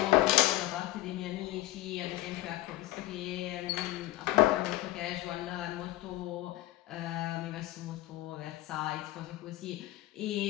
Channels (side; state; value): right; quieter; 16.8 dB